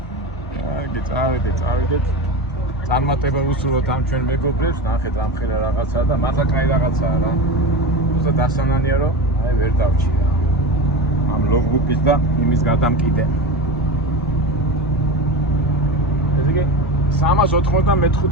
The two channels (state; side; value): normal; both; correlation 0.24